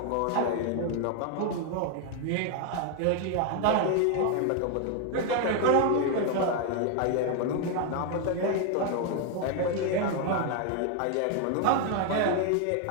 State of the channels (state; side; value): different; both; correlation 0.01